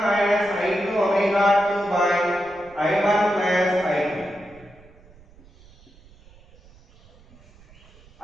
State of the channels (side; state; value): right; noise; rumble, 26 dB below the sound